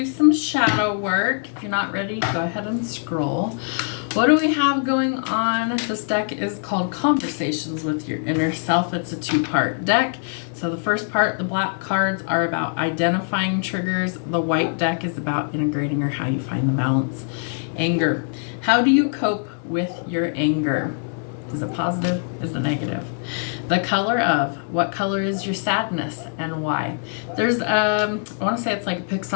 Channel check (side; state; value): right; silent; 64 dB below the other